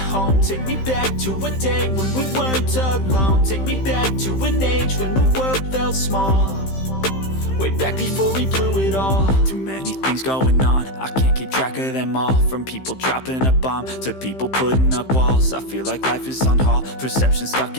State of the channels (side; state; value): right; late; 15 ms